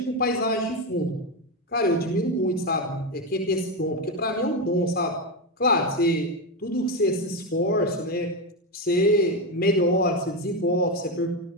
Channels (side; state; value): both; normal; correlation 0.11